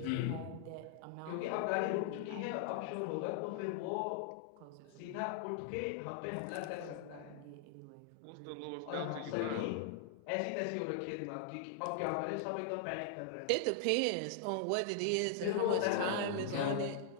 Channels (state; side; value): different; both; correlation 0.00